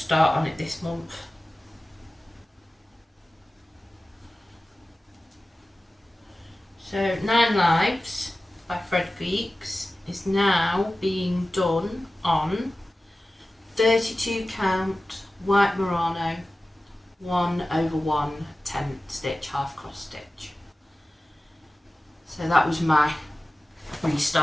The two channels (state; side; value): normal; both; correlation 0.96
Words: on it this month. So 9 Lives by ThreadGeeks is now being done on 32 count white Murano 1/1 10 stitch half cross stitch. So that was my